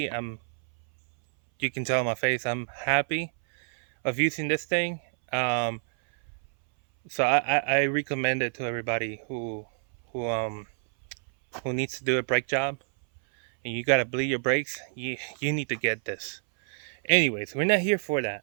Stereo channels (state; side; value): silent; left; 60 dB below the other